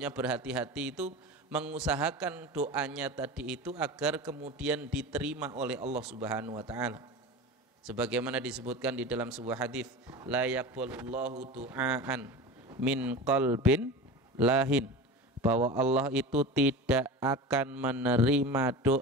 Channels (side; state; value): both; normal; correlation 0.30